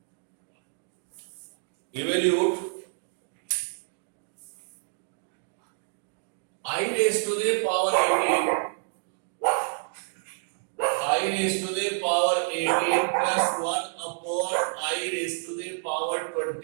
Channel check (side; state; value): left; silent; 56 dB below the other